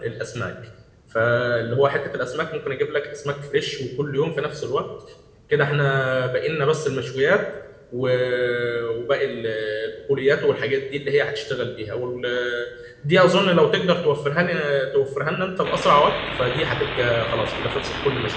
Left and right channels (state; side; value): identical; both; correlation 1.00